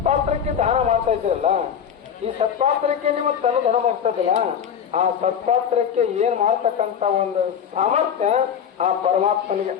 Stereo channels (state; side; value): quieter; right; 8.1 dB